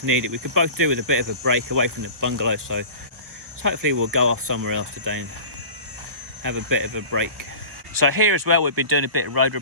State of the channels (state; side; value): late; left; 1.4 ms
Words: need it. We could both do with a bit of a break away from the bungalow, so hopefully we'll go off somewhere else today and have a bit of a break. So here as well, we've been doing a bit of road